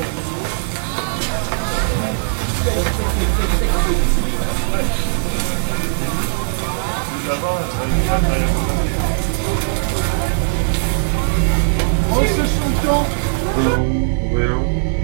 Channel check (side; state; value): left; silent; digital silence